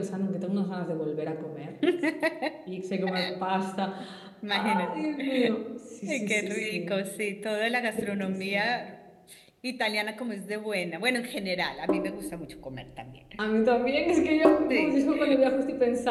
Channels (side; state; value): both; identical; correlation 1.00